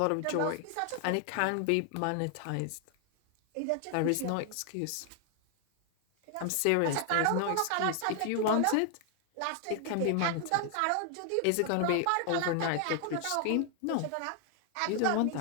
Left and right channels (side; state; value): both; different; correlation 0.00